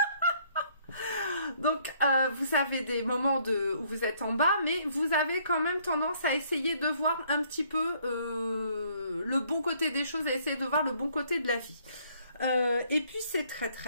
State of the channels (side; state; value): both; inverted; correlation -0.64